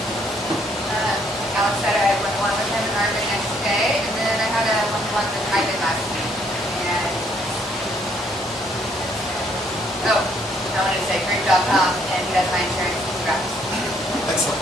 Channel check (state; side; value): normal; both; correlation 0.67